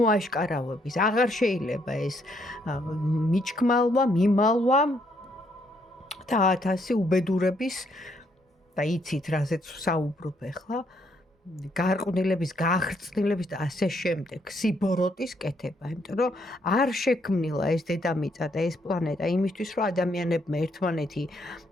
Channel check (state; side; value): normal; both; correlation 0.72